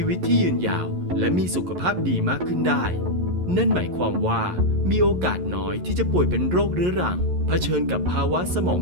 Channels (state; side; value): late; left; 11 ms